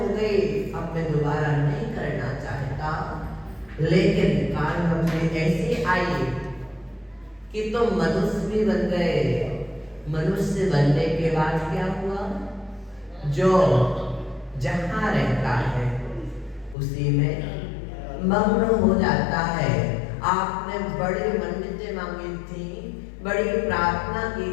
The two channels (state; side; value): drops out; right; at 16.8 s